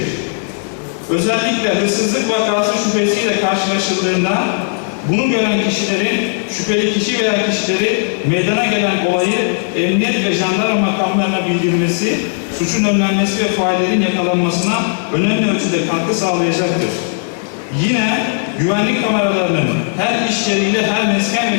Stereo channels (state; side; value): silent; right; digital silence